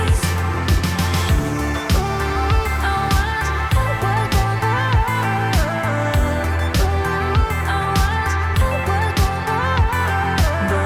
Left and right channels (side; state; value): both; identical; correlation 1.00